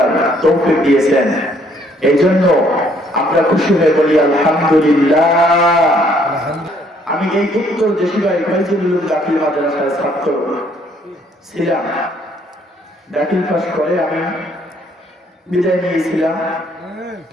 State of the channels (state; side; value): normal; both; correlation 0.65